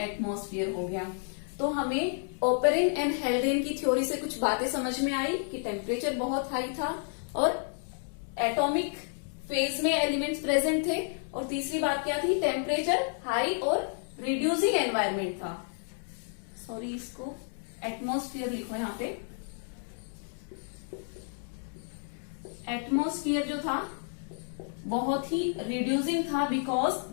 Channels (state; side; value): silent; right; 57 dB below the other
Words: एटमॉस्फेयर हो गया। तो हमें ओपेरिन एंड हेल्डेन की थ्योरी से कुछ बातें समझ में आई कि टेम्परेचर बहुत हाई था और एटॉमिक फेज में एलिमेंट्स प्रेजेंट थे। और तीसरी बात क्या थी? टेम्परेचर हाई और रिड्यूसिंग एनवायरमेंट था। सॉरी, इसको एटमॉस्फेयर लिखो यहां पे। एटमॉस्फेयर जो था बहुत ही रिड्यूसिंग था, because